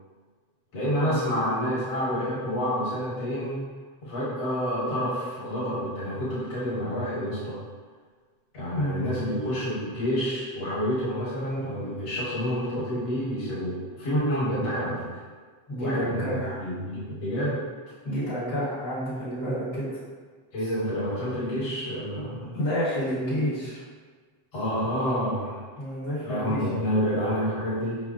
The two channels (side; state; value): right; late; 7.8 ms